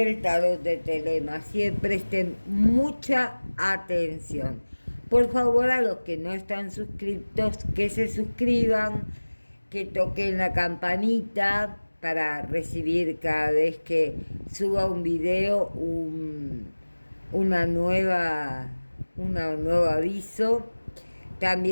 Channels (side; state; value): both; inverted; correlation -1.00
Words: tarot de Telema. Así que presten mucha atención. Por favor, a los que no están suscritos, que se suscriban, que toquen la campanita para recibir cada vez que suba un video una nueva, un nuevo aviso.